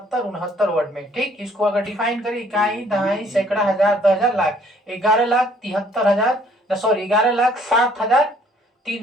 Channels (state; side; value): normal; both; correlation 0.61